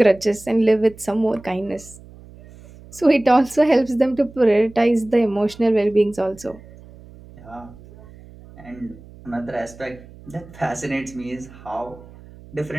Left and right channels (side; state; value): right; noise; hum, 21 dB below the sound